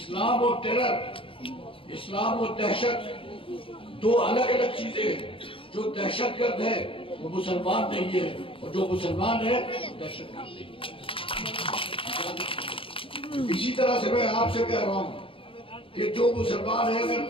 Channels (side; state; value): right; late; 0.26 ms